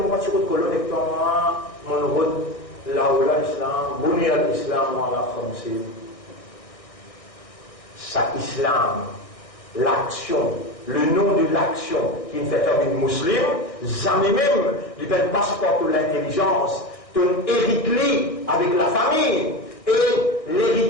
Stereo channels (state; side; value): late; right; 1.6 ms